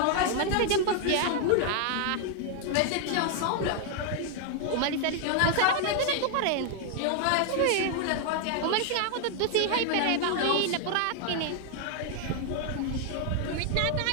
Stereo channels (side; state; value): both; different; correlation 0.00